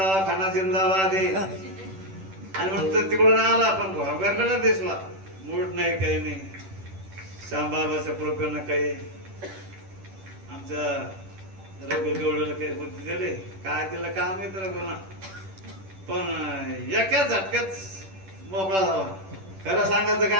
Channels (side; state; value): left; late; 10 ms